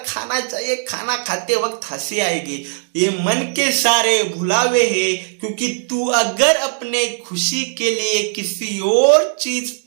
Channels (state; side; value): silent; left; 62 dB below the other